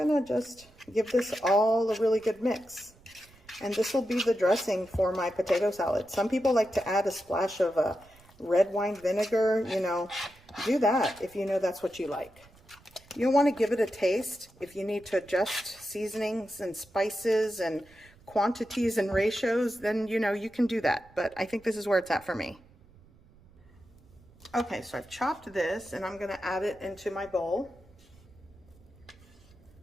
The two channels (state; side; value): noise; right; rumble, 27 dB below the sound